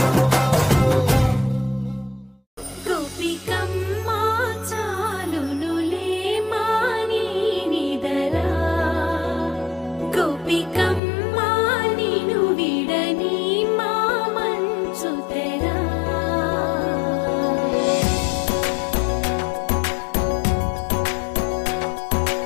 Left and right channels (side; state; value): right; drops out; at 11.0 s